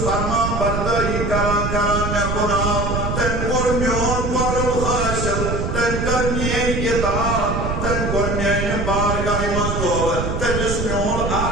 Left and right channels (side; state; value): right; noise; rumble, 1 dB below the sound